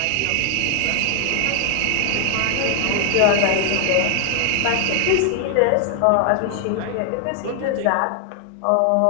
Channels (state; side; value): different; both; correlation 0.00